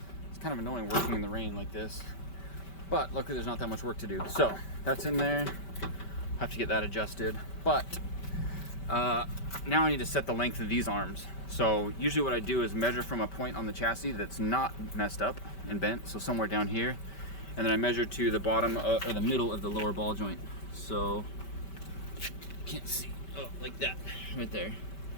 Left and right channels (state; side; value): late; right; 5.2 ms